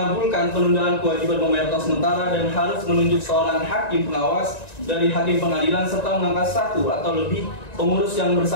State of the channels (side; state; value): right; late; 1.9 ms